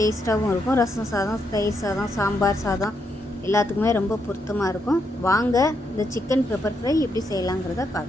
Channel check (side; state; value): both; normal; correlation 0.79